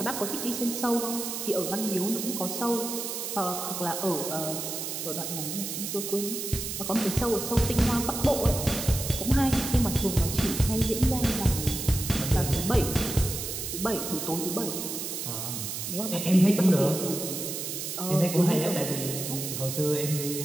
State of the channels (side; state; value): right; noise; hiss, 5 dB below the sound